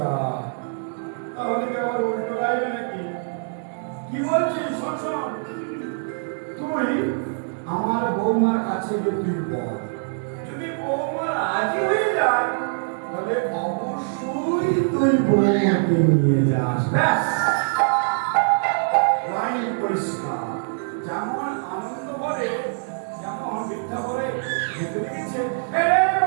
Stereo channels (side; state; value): left; silent; digital silence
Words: তাহলে কি আবার উল্টো গাইবে নাকি? কি বলছিস? শোন শোন, তুই আমার বৌমার কাছে গিয়ে তুই বল, যদি বৌমা রাজি হয়ে যায় তাহলে অবশ্যই তুই বৌমাকে নিয়ে যাস। ব্যাস, লাইন পরিষ্কার। যেমন আনন্দ বলে